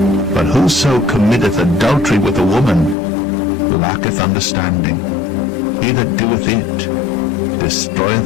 But whoso committeth adultery with a woman lacketh understanding. He that doeth it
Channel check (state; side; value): drops out; right; at 3.0 s